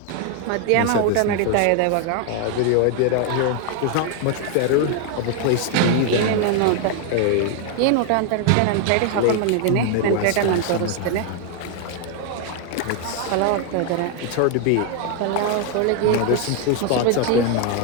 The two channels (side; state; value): both; different; correlation 0.01